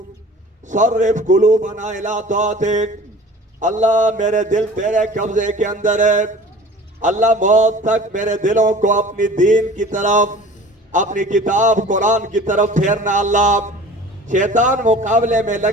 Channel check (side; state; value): both; normal; correlation 0.44